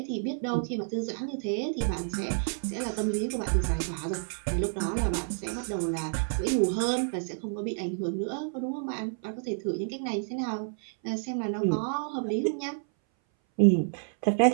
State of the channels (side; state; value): left; silent; 58 dB below the other